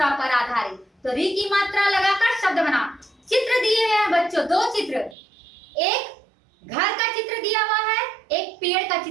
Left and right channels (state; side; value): drops out; left; at 5.2 s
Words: पर आधारित। तो री की मात्रा लगाकर शब्द बनाओ। चित्र दिए हैं बच्चों, 2 चित्र, एक घर का चित्र दिया हुआ है, एक पेड़ का